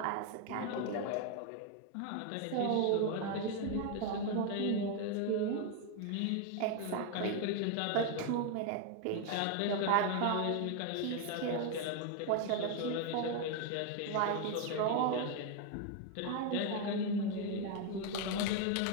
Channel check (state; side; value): different; both; correlation 0.01